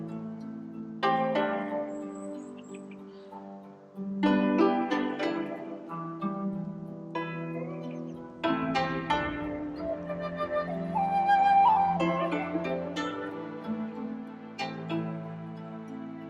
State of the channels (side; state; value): both; identical; correlation 1.00